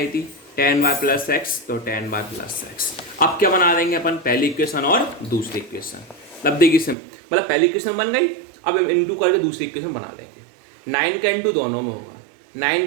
थी टेन वाई प्लस एक्स, तो टेन वाई प्लस एक्स। अब क्या बना देंगे अपन, पहली इक्वेशन और दूसरी इक्वेशन। मतलब देखिए मतलब पहली इक्वेशन बन गई, अब इंटू करके दूसरी इक्वेशन बना देंगे। 9 का इंटू दोनों में होगा,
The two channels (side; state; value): left; drops out; at 7.0 s